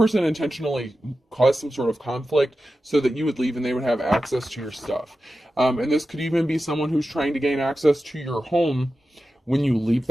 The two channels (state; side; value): normal; both; correlation 0.92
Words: intentionally caused some sort of conflict so that you would leave and they would have access to your stuff. And this could even be someone who's trying to gain access to your home when you leave